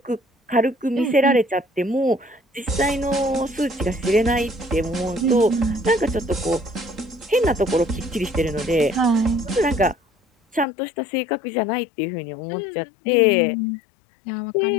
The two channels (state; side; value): drops out; right; at 10.7 s